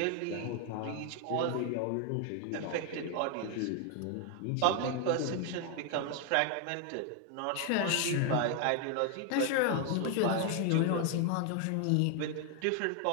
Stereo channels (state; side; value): different; both; correlation 0.00